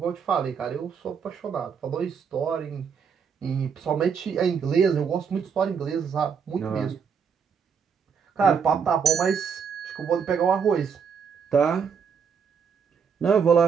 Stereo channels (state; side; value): quieter; left; 6.5 dB